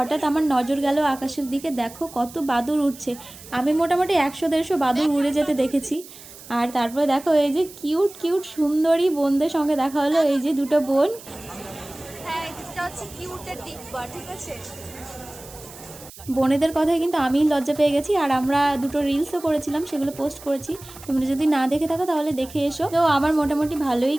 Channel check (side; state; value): right; noise; hiss, 18 dB below the sound